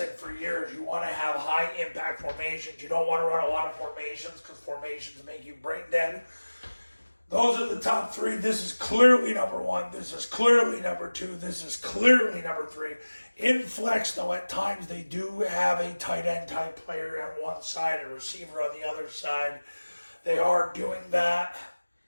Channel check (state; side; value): inverted; both; correlation -1.00